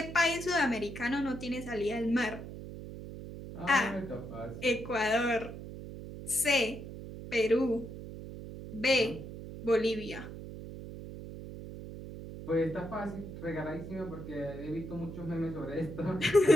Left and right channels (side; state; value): right; noise; hum, 11 dB below the sound